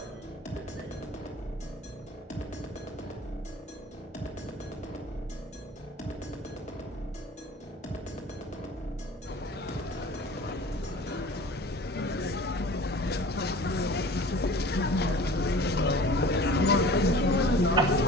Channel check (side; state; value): both; normal; correlation 0.43